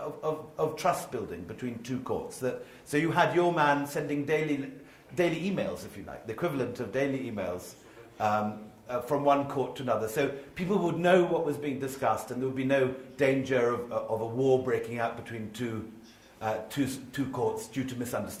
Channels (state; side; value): identical; both; correlation 1.00